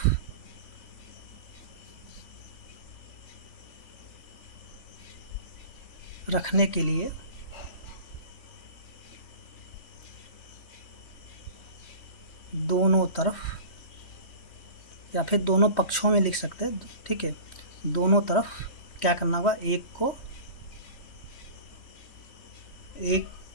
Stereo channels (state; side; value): late; right; 3.1 ms